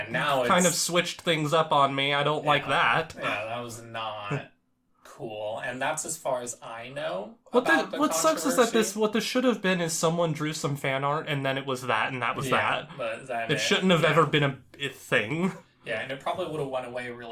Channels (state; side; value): identical; both; correlation 1.00